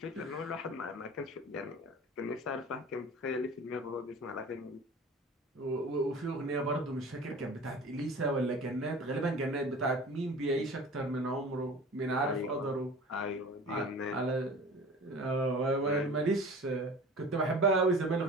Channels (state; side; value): normal; both; correlation 0.40